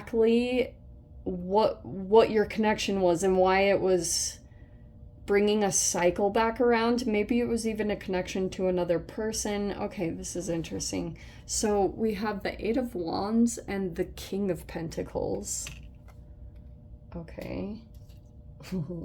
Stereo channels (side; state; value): both; identical; correlation 1.00